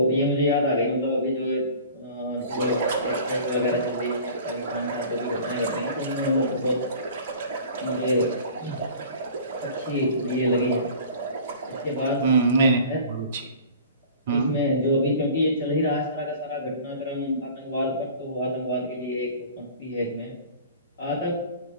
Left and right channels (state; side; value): inverted; both; correlation -0.44